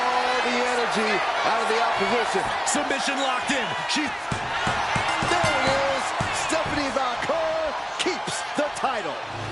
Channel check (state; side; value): identical; both; correlation 1.00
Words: the energy out of the opposition. Submission locked in. There it is. Stephanie Valcour keeps the title.